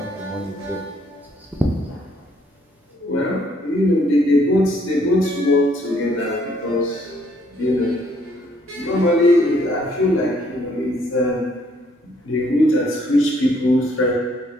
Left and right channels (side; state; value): both; normal; correlation 0.66